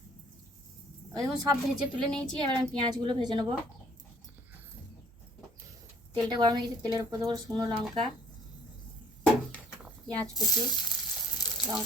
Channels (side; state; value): both; normal; correlation 0.57